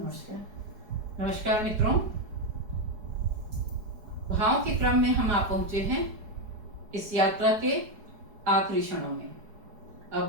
नमस्कार मित्रों, भाव के क्रम में हम आ पहुंचे हैं इस यात्रा के आखिरी क्षणों में।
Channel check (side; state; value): left; late; 4.8 ms